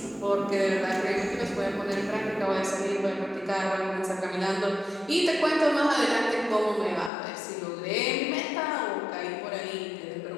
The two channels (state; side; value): drops out; right; at 7.1 s